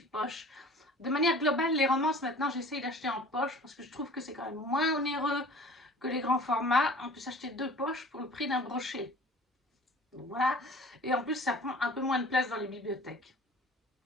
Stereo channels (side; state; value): both; normal; correlation 0.45